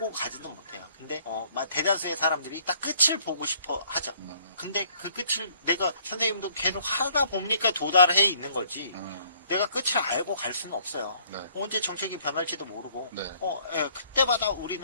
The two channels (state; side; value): inverted; both; correlation -0.61